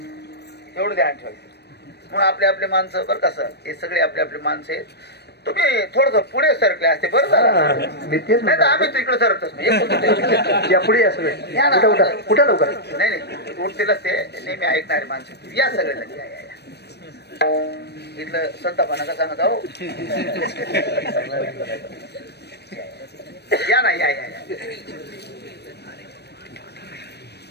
एवढं ध्यान ठेवायचं. म्हणून आपले माणसं बरं कसं हे सगळे आपले माणसं आहेत. तुम्ही थोडस पुढे सरकले असते बरं झालं. नाही तर आम्ही तिकडे सरकतच नाही. पुढे कुठं लवकर नाही उठतीलच ते नेहमी ऐकणारे माणसं या सगळे इथलं संतापणा का सांगत आहो. या ना या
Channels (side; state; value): right; late; 0.48 ms